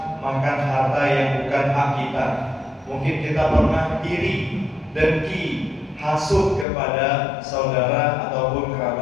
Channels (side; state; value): right; drops out; at 6.7 s